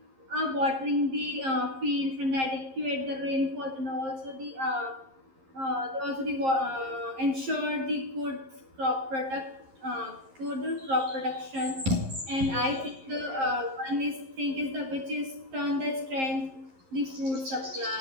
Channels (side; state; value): left; late; 11 ms